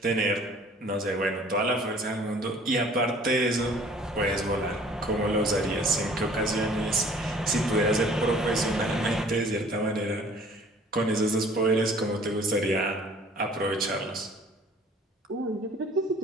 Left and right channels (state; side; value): normal; both; correlation 0.52